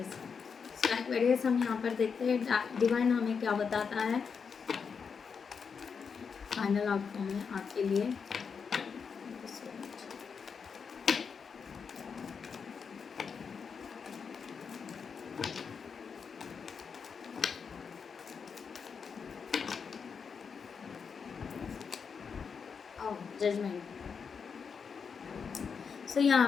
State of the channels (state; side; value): quieter; right; 6.0 dB